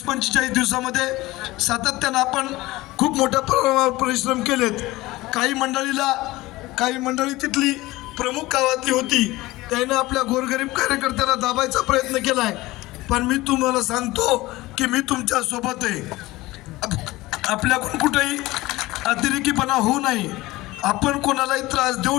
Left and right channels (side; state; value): right; quieter; 19.2 dB